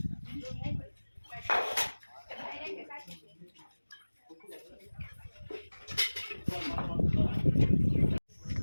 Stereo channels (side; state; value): both; inverted; correlation -1.00